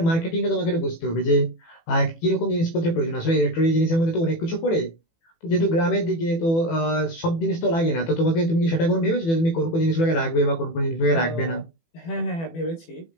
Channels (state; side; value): late; right; 18 ms